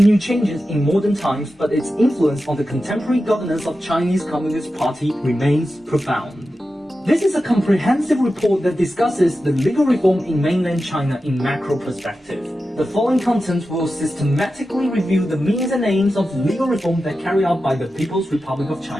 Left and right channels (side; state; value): both; normal; correlation 0.92